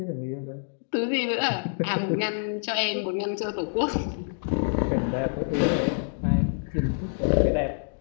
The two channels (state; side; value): silent; right; digital silence